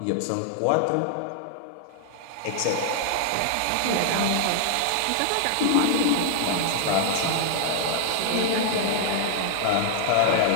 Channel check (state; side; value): different; both; correlation -0.01